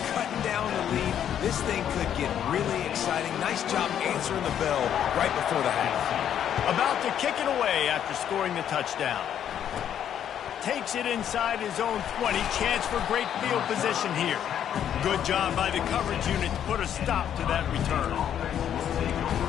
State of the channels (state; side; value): quieter; right; 9.7 dB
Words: cutting down the lead. This thing could get really exciting. Nice job answering the bell right before the half. About to kick it away after scoring the touchdown. Takes it inside his own 20. Chance for great field position here. Good job by the coverage unit to put a stop to that return.